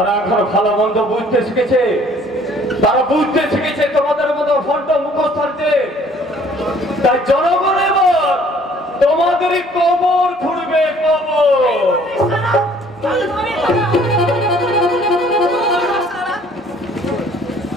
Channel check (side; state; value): both; normal; correlation 0.57